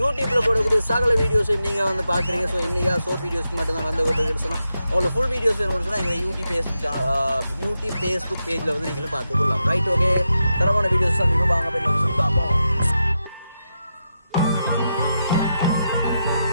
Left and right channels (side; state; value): both; inverted; correlation -0.87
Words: போடக்கூடிய சகல வீடியோஸையும் நீங்கள் வந்து பார்க்குறீங்க. ஸோ இன்றைக்கா ஷோர்ட் வீடியோஸ்க்கு மட்டும் தான் வந்து கொண்டு சொன்னால் உங்களுக்கு ஃபுல் வீடியோஸ் வேணும்னு சொன்னால் எங்களை யூடியூப் ஃபேஸ்புக் பேஜில் வந்து நீங்களும் பார்த்துக்கொள்ளலாம். Right, okay. தரமான வீடியோஸ் தான் நீங்கள் வாங்க போய் சொல்லி பார்ப்போம்.